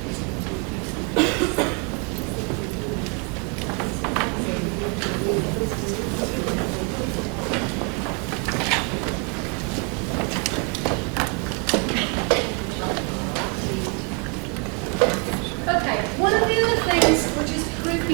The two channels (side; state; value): left; quieter; 33.1 dB